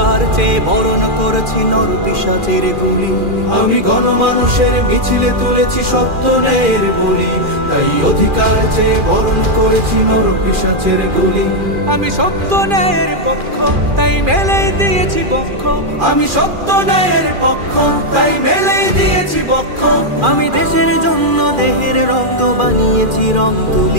চেয়ে বরণ করেছি নরপিশাচের গুলি। আমি গণমানুষের মিছিলে তুলেছি সত্য ন্যায়ের বুলি, তাই অধিকার চেয়ে বরণ করেছি নরপিশাচের গুলি। আমি সত্য ন্যায়ের পক্ষ, তাই মেলেই দিয়েছি বক্ষ। আমি সত্য ন্যায়ের পক্ষ, তাই মেলেই দিয়েছি বক্ষ। আমি দেশের জন্য দেহের রক্ত বানিয়েছি রং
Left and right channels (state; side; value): late; left; 2.4 ms